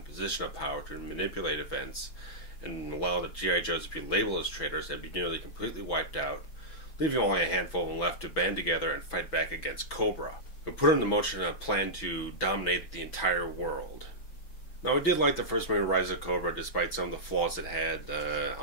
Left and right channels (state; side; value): late; right; 6.1 ms